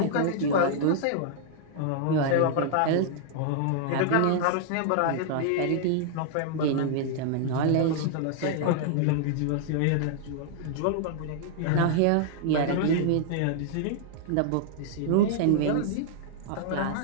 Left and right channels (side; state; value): both; different; correlation -0.01